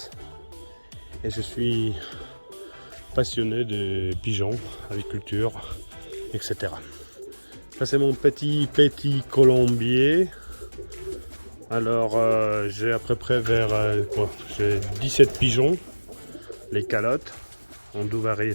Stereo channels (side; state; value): both; inverted; correlation -1.00